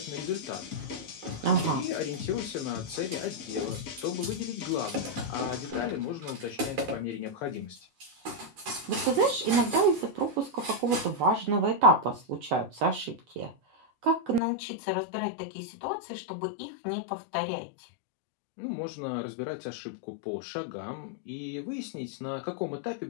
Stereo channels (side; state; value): right; drops out; at 14.4 s